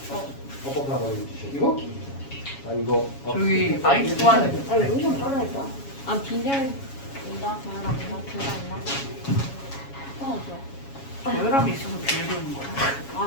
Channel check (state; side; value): late; right; 7.2 ms